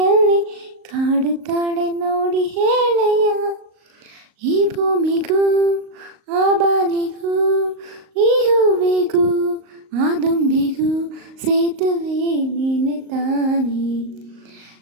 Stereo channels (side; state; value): left; late; 38 ms